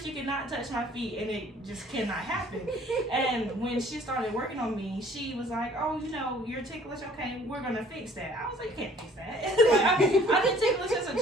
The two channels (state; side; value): normal; both; correlation 0.55